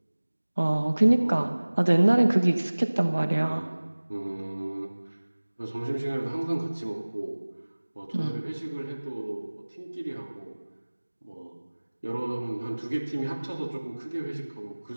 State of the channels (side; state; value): both; inverted; correlation -1.00